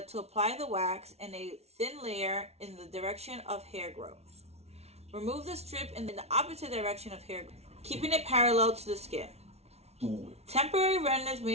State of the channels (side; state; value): left; late; 0.31 ms